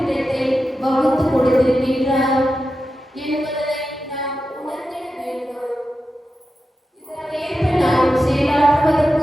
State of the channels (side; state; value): both; normal; correlation 0.91